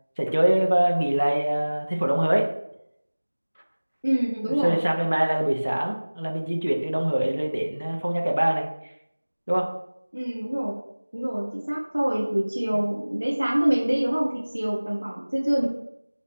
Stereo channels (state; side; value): inverted; both; correlation -1.00